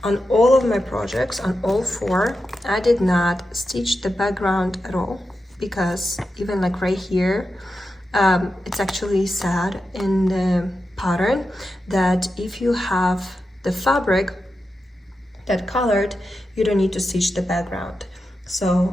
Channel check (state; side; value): normal; both; correlation 0.89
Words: on all of my projects, on all 4, I did not stitch the background at all, because even like right here, it's actually said in the pattern that if you have the fabric that colored, you don't need to stitch the background.